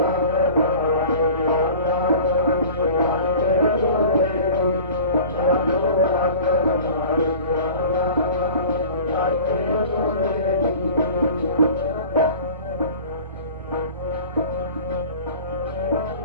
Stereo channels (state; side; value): inverted; both; correlation -0.42